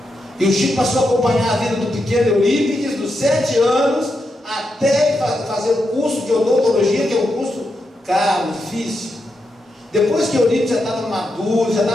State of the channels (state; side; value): normal; both; correlation 0.85